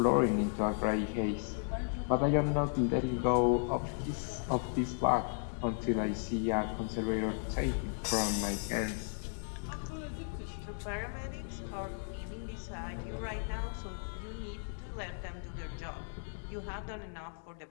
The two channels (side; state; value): right; silent; digital silence